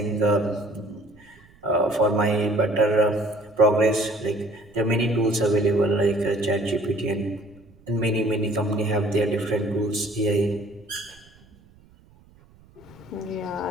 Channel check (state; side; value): noise; right; rumble, 27 dB below the sound